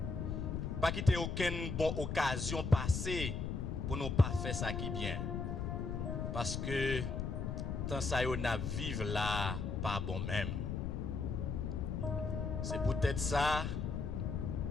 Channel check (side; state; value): left; noise; rumble, 2 dB below the sound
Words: Pas quitter aucune bonne occasion passée pour nous pas faire ça qui bien. Parce que tant ça yo n'a vivre là pas bon même. C'est peut-être ça.